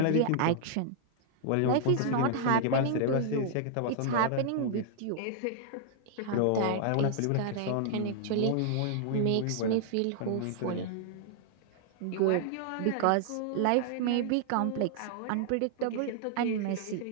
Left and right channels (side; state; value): both; different; correlation -0.01